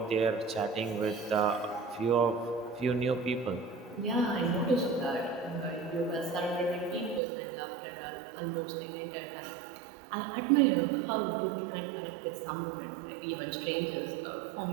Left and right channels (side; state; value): left; drops out; at 7.2 s